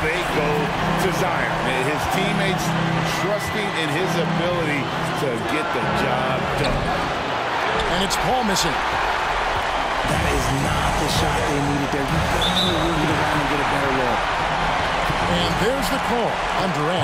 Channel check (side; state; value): both; identical; correlation 1.00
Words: go to Zion. His teammates trusting in his ability to get the job done. And it's Paul missing. That is not the shot they needed there. You got to move it around and get a better look. And there's the call on